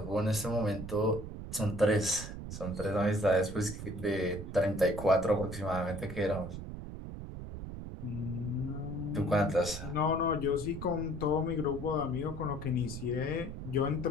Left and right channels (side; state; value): right; noise; rumble, 9 dB below the sound